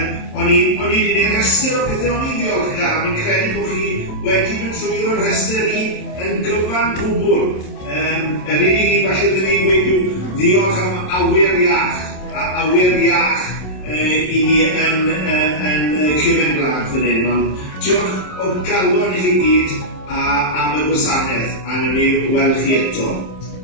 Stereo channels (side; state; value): right; late; 27 ms